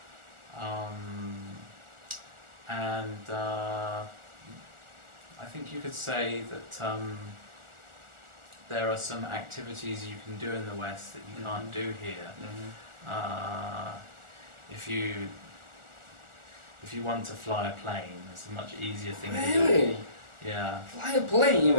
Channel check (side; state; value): left; late; 1.4 ms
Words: And I think you could say that there are some activities you can do in the West that you can't do here. If you want to fly a plane, it's a much easier thing to do. Really? Yeah. Fly a plane